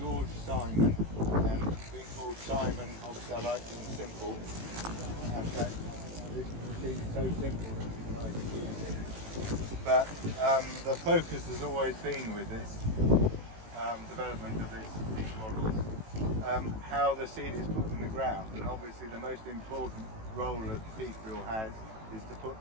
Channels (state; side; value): late; left; 18 ms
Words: Simon, and being called Simon, obviously I like things simple, and that this machine is so simple that it's nice to use it. But the focus has always been with this development of these models, how the seed is put in the ground, and obviously the most important role that seed drill has is to put